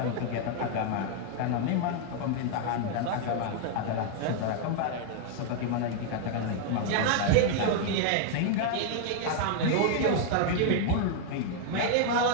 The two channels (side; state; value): both; different; correlation 0.00